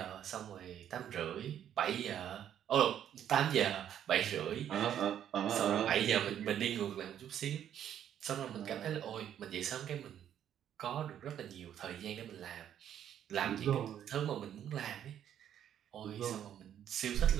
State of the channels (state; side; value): quieter; left; 10.1 dB